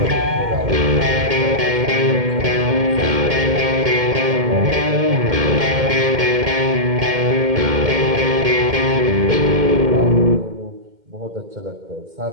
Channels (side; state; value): left; late; 2.1 ms